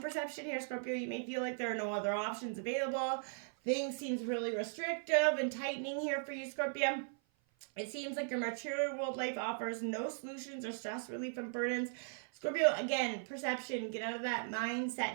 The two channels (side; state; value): left; silent; 52 dB below the other